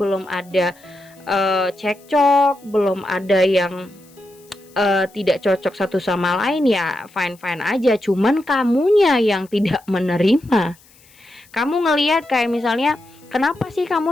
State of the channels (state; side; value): noise; left; hiss, 28 dB below the sound